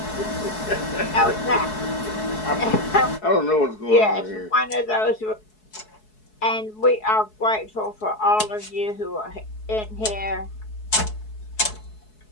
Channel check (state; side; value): late; right; 4.7 ms